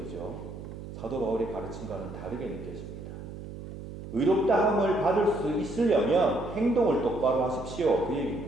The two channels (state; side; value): noise; right; hum, 11 dB below the sound